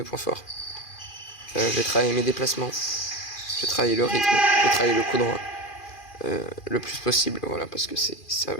points forts. Je vais travailler mes déplacements. Je vais travailler le rythme. Je vais travailler le coup droit. Le plus possible, voilà, parce que c'est un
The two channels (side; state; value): right; late; 2.4 ms